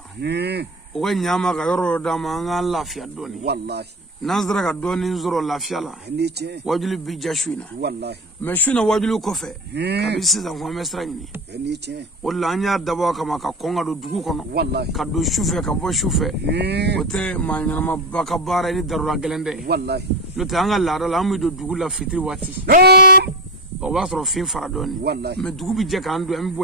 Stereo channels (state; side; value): normal; both; correlation 0.21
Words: o ga nyama ka yoro dama anga lafiya doni wallahi nazara ka doni zoro lafiya la ni tien wajulu bi jashuina wallahi me shuna wajulu ko fe ka bisisa ko mesra ni ni tien wala anya dabo kama ka konga do dugu kono wallahi ka do shufe ka bo shufe ote manyana ma baka bara ni darura gelende wallahi no te anga la la mu do dugu la fitri wati o ba soro fin fara doni wallahi me dugu bi je ka ando am